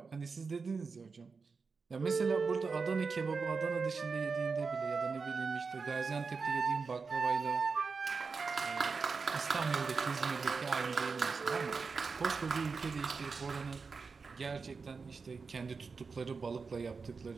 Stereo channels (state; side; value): quieter; left; 4.8 dB